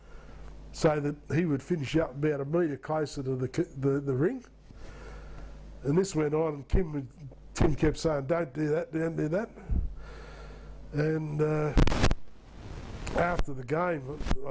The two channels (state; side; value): identical; both; correlation 1.00